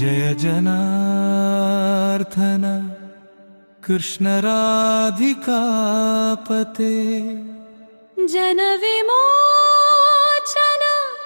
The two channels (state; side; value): inverted; both; correlation -1.00